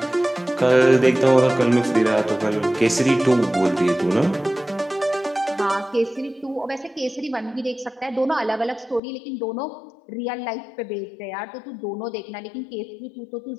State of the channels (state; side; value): drops out; right; at 9.0 s